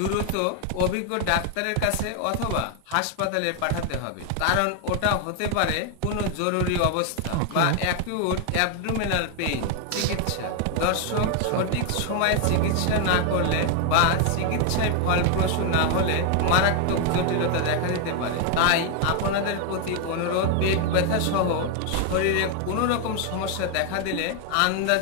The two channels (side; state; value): both; different; correlation 0.01